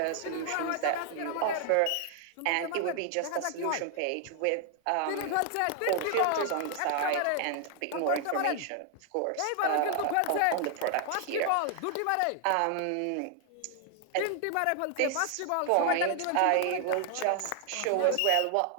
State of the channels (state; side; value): different; both; correlation 0.00